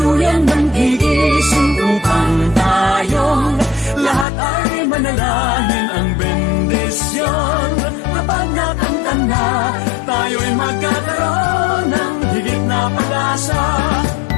nanggigising upang tayong lahat ay manalangin ang bendisyon. Kapag nakanta na, tayo'y magkakaroon ng higit na pag-asa.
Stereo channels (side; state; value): right; drops out; at 4.2 s